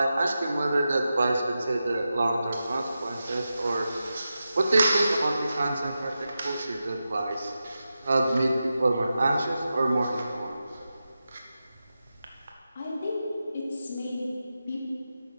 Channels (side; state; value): both; inverted; correlation -0.91